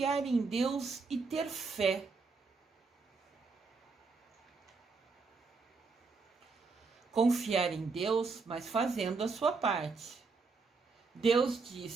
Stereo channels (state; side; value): quieter; left; 4.4 dB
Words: em Deus e ter fé. Confiar em Deus, mas fazendo a sua parte. Deus